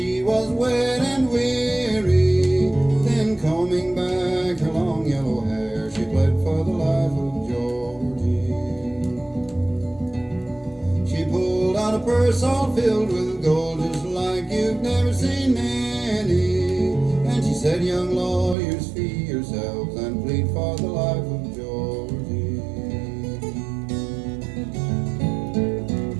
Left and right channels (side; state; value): left; drops out; at 18.6 s